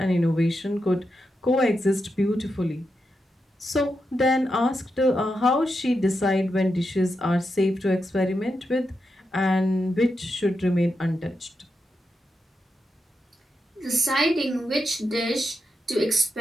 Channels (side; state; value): both; normal; correlation 0.86